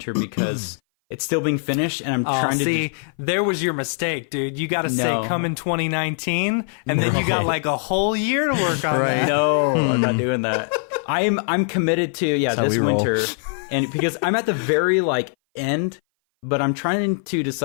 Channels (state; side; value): silent; right; 58 dB below the other